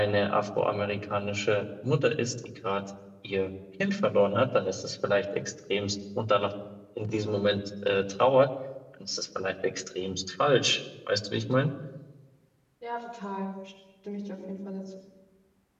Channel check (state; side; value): identical; both; correlation 1.00